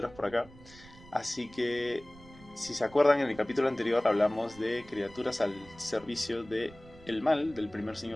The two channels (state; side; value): noise; right; rumble, 21 dB below the sound